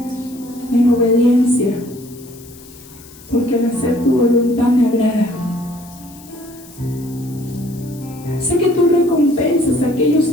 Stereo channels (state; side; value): noise; left; hiss, 21 dB below the sound